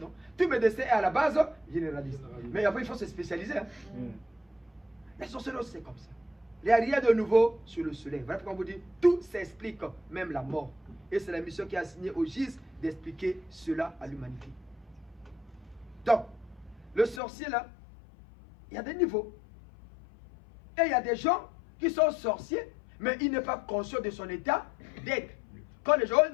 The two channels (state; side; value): drops out; right; at 17.2 s